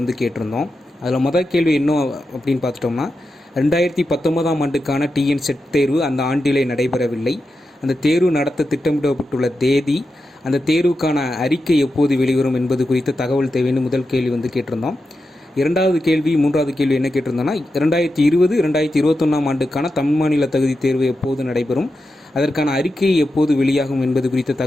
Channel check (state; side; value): normal; both; correlation 0.89